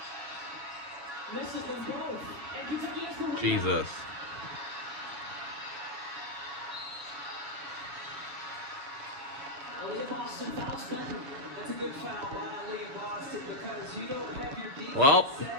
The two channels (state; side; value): late; left; 7.1 ms